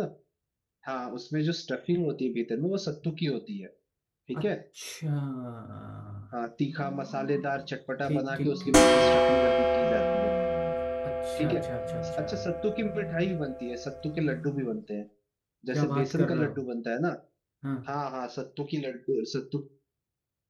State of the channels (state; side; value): identical; both; correlation 1.00